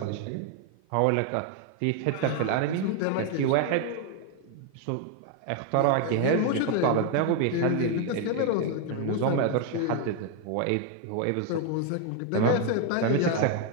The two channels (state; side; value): different; both; correlation 0.01